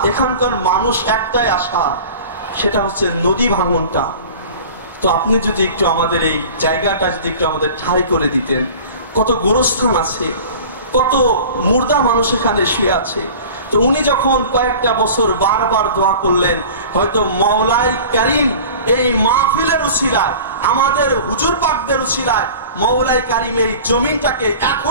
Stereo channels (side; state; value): both; inverted; correlation -0.40